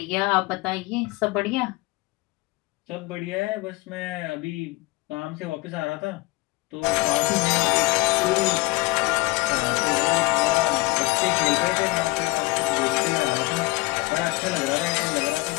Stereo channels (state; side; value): quieter; right; 21.6 dB